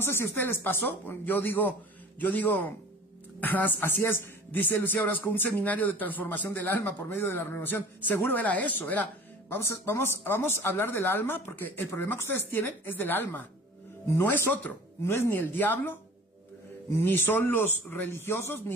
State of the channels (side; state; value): both; normal; correlation 0.43